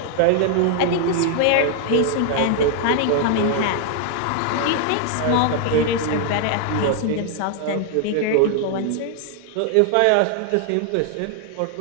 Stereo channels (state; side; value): different; both; correlation 0.00